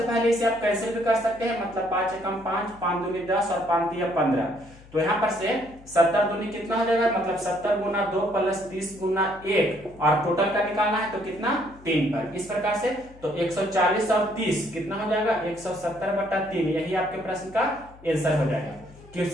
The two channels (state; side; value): noise; left; hum, 22 dB below the sound